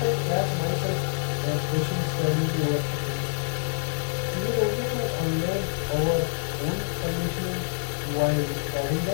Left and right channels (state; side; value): silent; right; 61 dB below the other